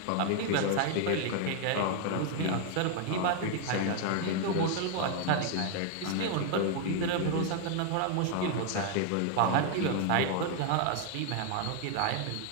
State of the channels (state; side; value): different; both; correlation 0.00